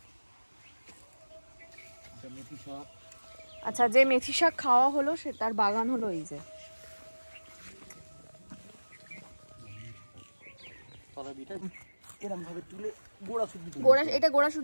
আচ্ছা, যে মেথি শাক খাওয়া হলো সে তার বাগান হলো এই যে। এটা গোড়া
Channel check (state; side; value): inverted; both; correlation -1.00